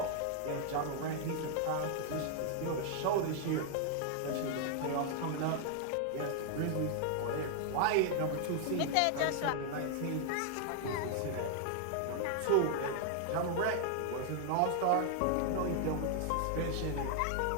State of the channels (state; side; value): different; both; correlation 0.00